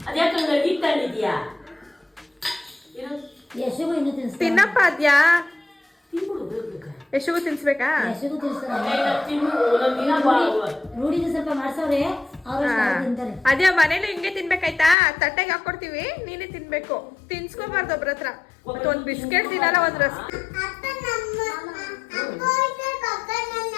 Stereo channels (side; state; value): right; drops out; at 15.0 s